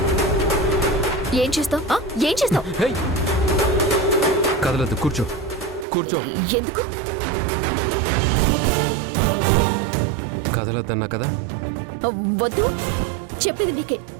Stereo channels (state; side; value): drops out; left; at 5.9 s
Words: ఏం చేస్తావు? ఏం చేస్తావు? హేయ్! కదలదు, కూర్చో కూర్చో. ఎందుకు కదలద్దన్నా కదా. వద్దు చెప్పేది నీకే.